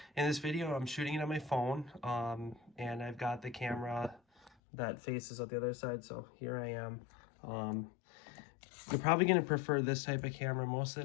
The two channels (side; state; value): right; drops out; at 4.5 s